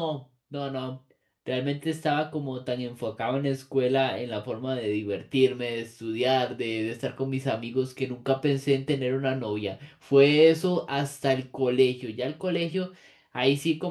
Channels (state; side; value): identical; both; correlation 1.00